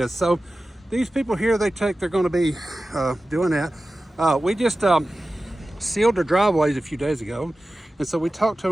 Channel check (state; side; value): normal; both; correlation 0.95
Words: So these people here, they're going to be doing that. We just sealed their driveways a few days ago, and so we talked to